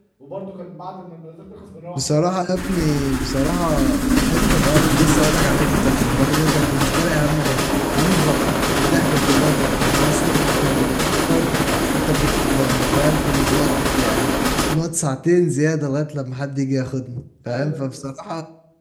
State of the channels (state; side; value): identical; both; correlation 1.00